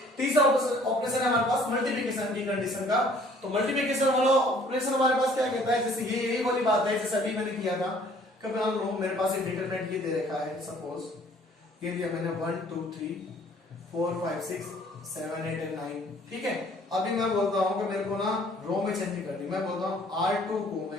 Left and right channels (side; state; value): both; normal; correlation 0.57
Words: तीसरा ऑपरेशन है हमारे पास मल्टीप्लिकेशन की कंडीशन का। तो मल्टीप्लिकेशन वाला ऑपरेशन हमारे पास क्या कहता है, जैसे ये यही वाली बात है जैसे अभी मैंने किया था। कभी मान लो मेरे पास एक डिटरमिनेंट ये दे रखा है, सपोज ये दिया मैंने 1 2 3 4 5 6 7 8 एंड 9। ठीक है, अभी मैं बोलता हूं कि मेरे को ना रो में चेंज करनी, मैं बोलता हूं R2 को